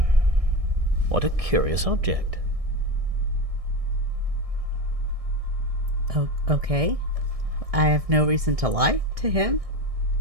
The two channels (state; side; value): late; left; 1.6 ms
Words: What a curious object. Oh, okay. I have no reason to lie to him.